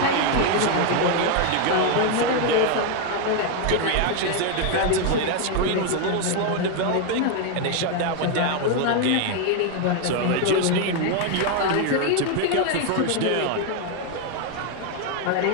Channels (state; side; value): different; both; correlation 0.01